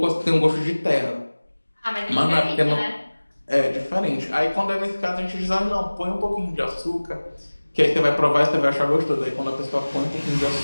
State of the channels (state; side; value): inverted; both; correlation -1.00